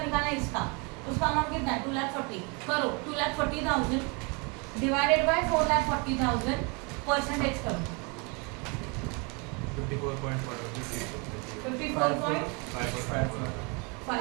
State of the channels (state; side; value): quieter; left; 31.5 dB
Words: निकालना है? इसका। उसका अमाउंट कितना है? 2,40,000। करो 2,40,000 डिवाइडेड बाय 4,40,000 परसेंटेज करो।